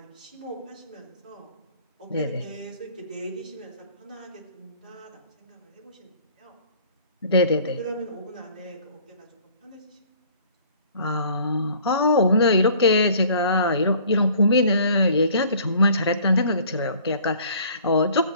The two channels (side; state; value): both; inverted; correlation -0.53